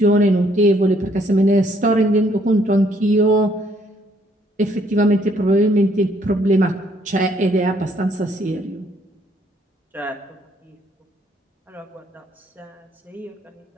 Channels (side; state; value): both; normal; correlation 0.66